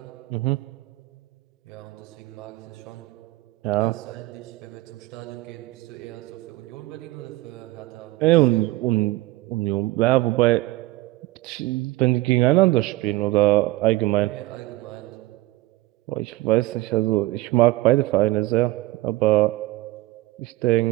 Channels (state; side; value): quieter; left; 18.9 dB